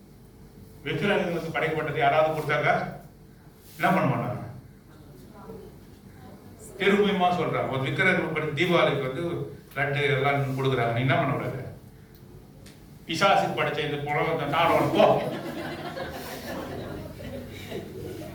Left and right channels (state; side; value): identical; both; correlation 1.00